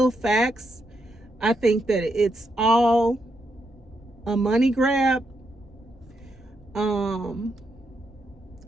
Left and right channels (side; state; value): both; normal; correlation 0.81